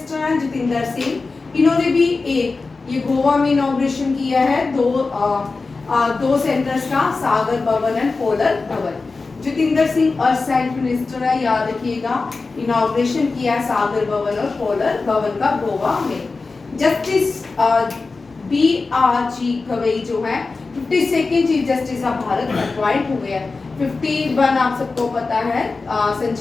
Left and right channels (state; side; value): quieter; right; 4.0 dB